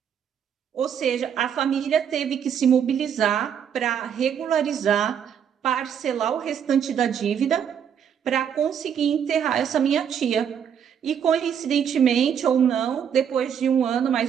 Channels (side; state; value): left; quieter; 8.2 dB